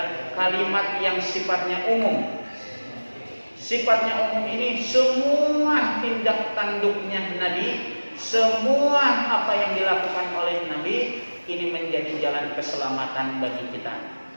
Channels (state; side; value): inverted; both; correlation -1.00